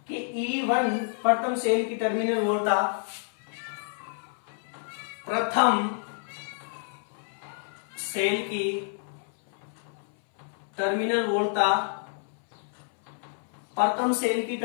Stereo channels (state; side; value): silent; right; 59 dB below the other